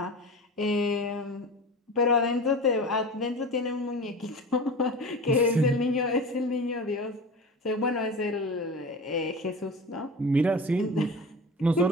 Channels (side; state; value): both; normal; correlation 0.33